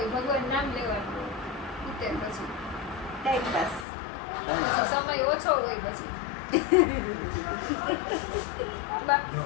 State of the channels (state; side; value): drops out; right; at 3.9 s